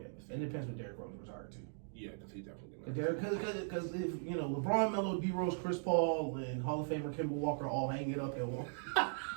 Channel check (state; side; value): silent; left; digital silence